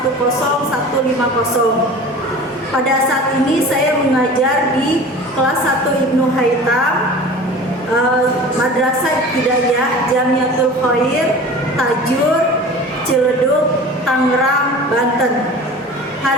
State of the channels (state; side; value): normal; both; correlation 0.39